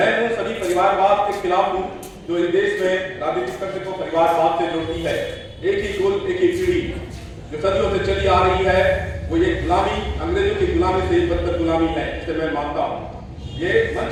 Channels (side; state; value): both; identical; correlation 1.00